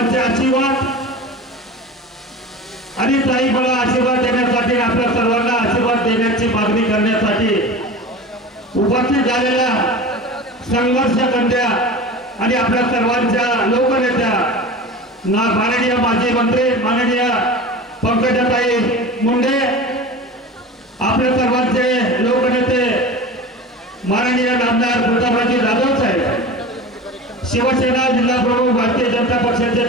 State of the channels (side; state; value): both; normal; correlation 0.33